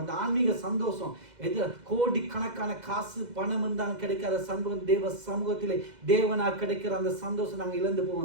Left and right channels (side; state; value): left; late; 2.0 ms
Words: அந்த ஆன்மீக சந்தோஷம் எது கோடிக்கணக்கான காசு பணம் இருந்தாலும் கிடைக்காத சமூகம் தேவ சமூகத்திலே தேவனாக கிடைக்கிற அந்த சந்தோஷம் நாங்கள் இழந்து